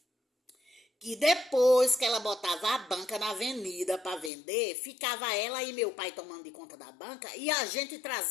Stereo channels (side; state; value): right; drops out; at 4.3 s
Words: que depois que ela botava a banca na avenida para vender, ficava ela e meu pai tomando de conta da banca e a gente